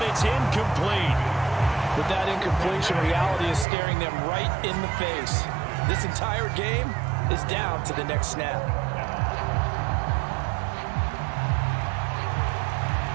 it's incomplete. With that incompletion, reality is staring them right in the face. This entire game is down to the next snap.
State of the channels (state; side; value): drops out; left; at 3.7 s